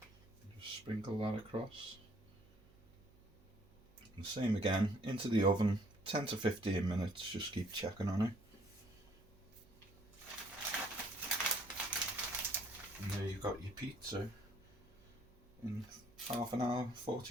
Just sprinkle that across. And same again, into the oven, 10 to 15 minutes, just keep checking on it. And there you've got your pizza in half an hour,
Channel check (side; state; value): right; noise; hum, 27 dB below the sound